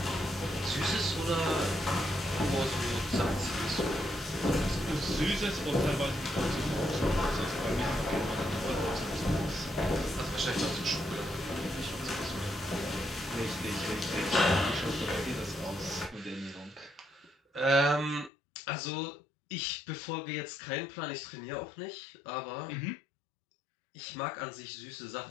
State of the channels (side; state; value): right; drops out; at 18.3 s